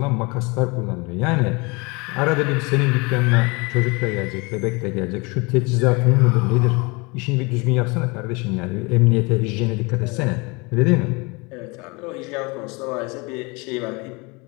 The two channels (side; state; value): right; quieter; 27.6 dB